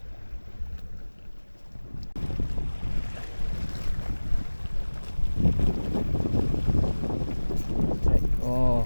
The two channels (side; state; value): both; inverted; correlation -1.00